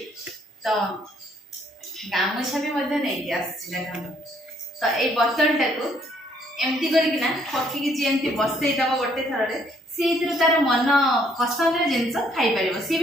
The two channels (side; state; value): both; normal; correlation 0.67